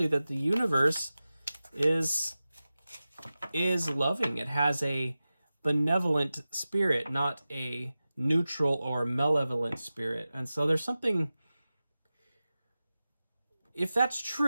that the universe is loving. It has a benevolent spirit, not a neutral or malevolent spirit. And so there's something, if that's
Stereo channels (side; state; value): both; inverted; correlation -0.95